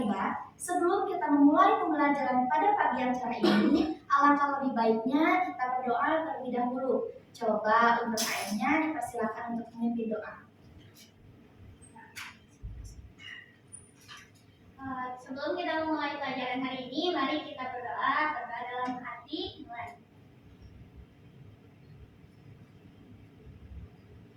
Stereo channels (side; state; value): both; identical; correlation 1.00